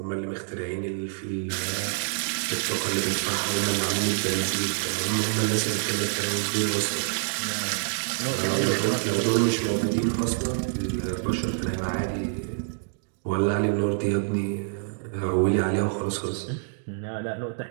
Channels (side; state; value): left; silent; digital silence